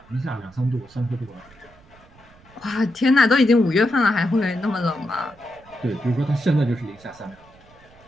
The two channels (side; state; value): right; noise; rumble, 27 dB below the sound